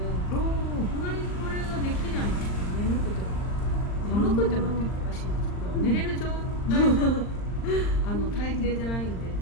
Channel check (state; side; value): late; right; 39 ms